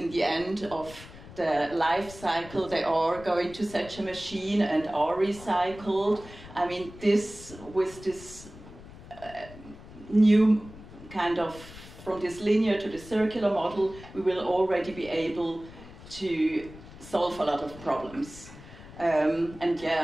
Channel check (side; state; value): left; noise; rumble, 17 dB below the sound